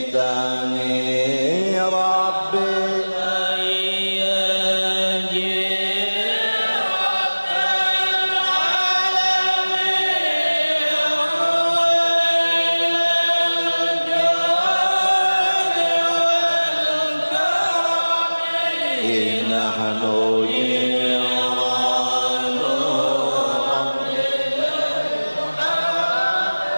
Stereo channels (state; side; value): inverted; both; correlation -1.00